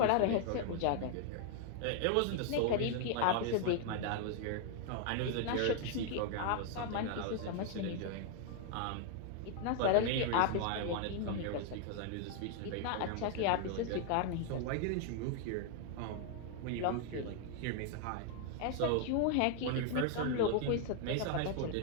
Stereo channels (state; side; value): different; both; correlation 0.00